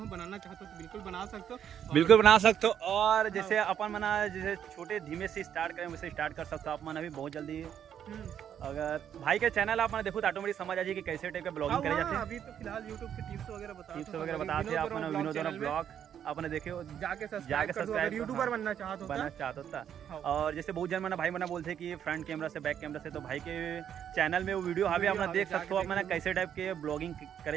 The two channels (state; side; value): quieter; left; 9.2 dB